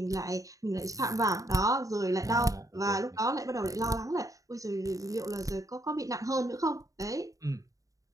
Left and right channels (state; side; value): late; left; 0.16 ms